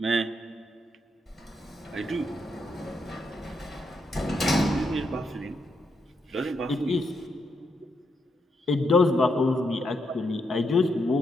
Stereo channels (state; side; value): normal; both; correlation 0.80